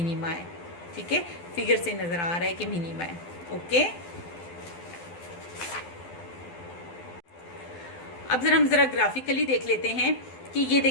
है, ठीक है। फिगर से नज़र आ रहा है कि मिनिमा है, ओके। अब हम ज़रा ग्राफिकली देख लेते हैं कि ये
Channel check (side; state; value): right; late; 12 ms